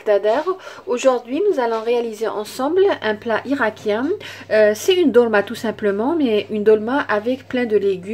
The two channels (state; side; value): identical; both; correlation 1.00